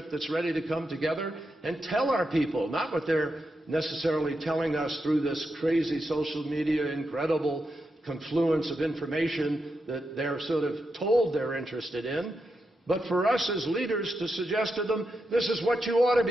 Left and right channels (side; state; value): both; normal; correlation 0.86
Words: that's ready to come together and tell our people, not what they're necessarily telling us through this crazy social media, incredible confluence of information that they're sort of told they're interested in, but for us as leaders to suggest to them, this is what you ought to